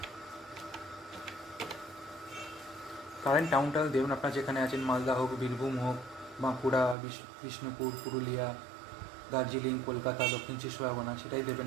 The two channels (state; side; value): drops out; left; at 7.0 s